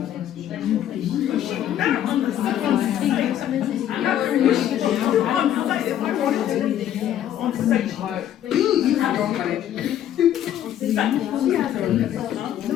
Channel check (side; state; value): right; quieter; 11.1 dB